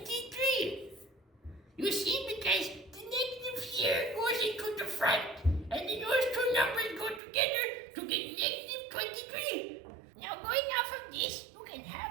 You see, because the negative here goes into the front, and then those two numbers go together to get negative 23. Now, going off of this, you can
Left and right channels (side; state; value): left; drops out; at 7.2 s